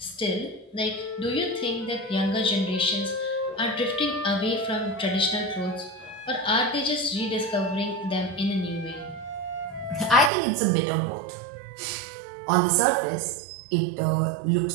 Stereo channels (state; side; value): drops out; left; at 10.3 s